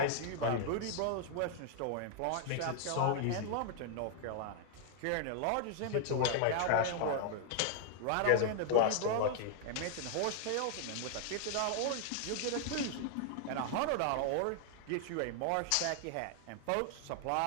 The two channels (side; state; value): both; different; correlation 0.00